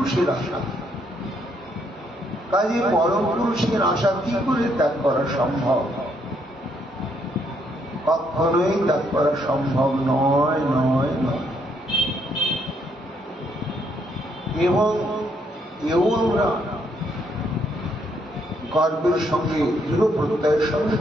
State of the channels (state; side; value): normal; both; correlation 0.72